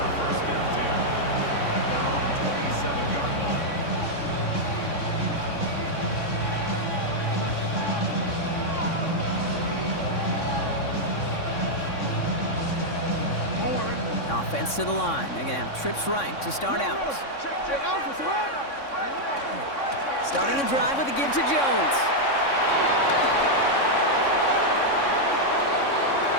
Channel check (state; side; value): late; right; 3.6 ms